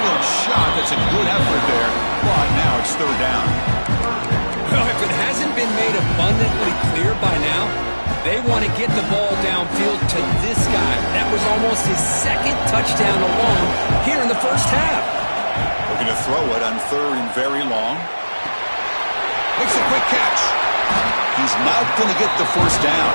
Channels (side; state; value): both; inverted; correlation -1.00